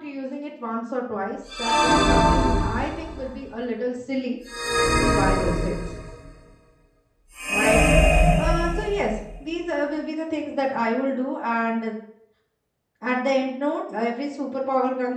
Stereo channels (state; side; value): identical; both; correlation 1.00